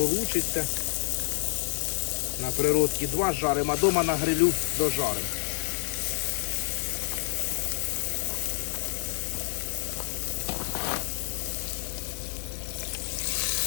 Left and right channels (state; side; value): silent; right; digital silence